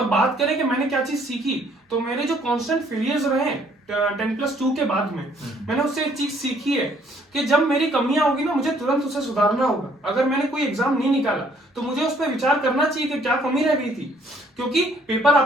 बात करें कि मैंने क्या चीज सीखी, तो मेरे जो कांस्टेंट फेलियर्स रहे 10+2 के बाद में, मैंने उससे एक चीज सीखी है कि जब मेरी कमियां होगी ना, मुझे तुरंत उसे सुधारना होगा। अगर मैंने कोई एग्जाम नहीं निकाला तो मुझे उस पर विचार करना चाहिए कि क्या कमी रह गई थी, क्योंकि पेपर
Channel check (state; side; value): normal; both; correlation 0.63